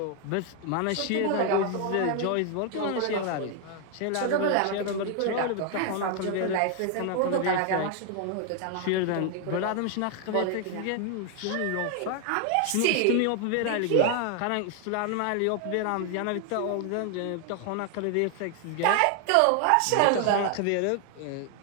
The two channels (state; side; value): different; both; correlation 0.00